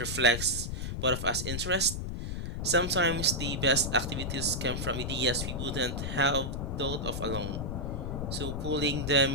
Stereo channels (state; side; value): noise; left; rumble, 4 dB below the sound